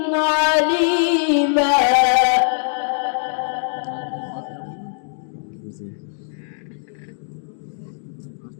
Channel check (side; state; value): right; silent; digital silence